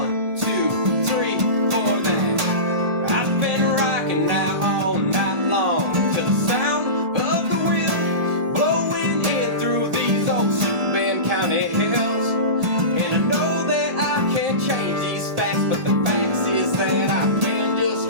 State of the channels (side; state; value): left; late; 1.8 ms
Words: 2, 3, 4, that I've been rocking out all night long to the sound of the wind blowing in through these old Steuben County hills. And I know that I can't change these facts, but the facts is that I've been just